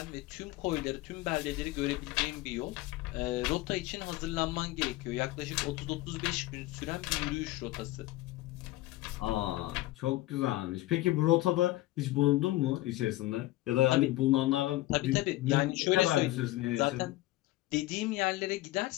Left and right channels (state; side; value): quieter; right; 17.7 dB